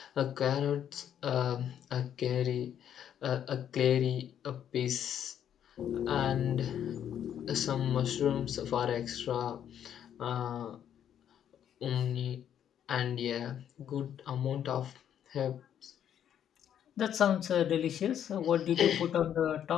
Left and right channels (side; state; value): right; quieter; 9.6 dB